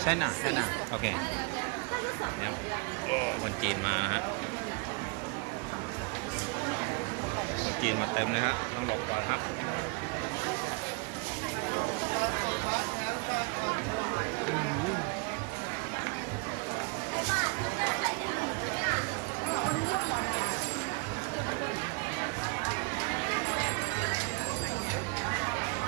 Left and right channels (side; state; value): left; quieter; 31.6 dB